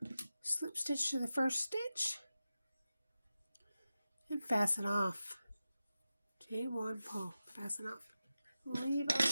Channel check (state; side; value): inverted; both; correlation -0.93